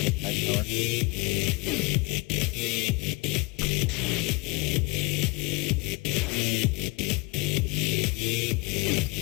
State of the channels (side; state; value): right; quieter; 25.8 dB